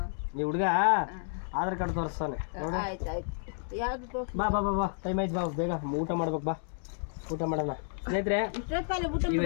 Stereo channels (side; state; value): right; silent; digital silence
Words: ನೀವು ಹುಡುಗ ಆಧಾರ್ ಕಾರ್ಡ್ ತೋರಿಸ್ತಾನೆ ನೋಡು. ಬಾ ಬಾ ಬಾ ಬಾ ಟೈಮ್ ಆಯ್ತು. ಬಾ ಬೇಗ ಊಟ ಮಾಡ್ಬೇಕು. ಬಾ ಊಟ ಮಾಡೋಣ. ಸ್ನೇಹಿತರೆ ಈ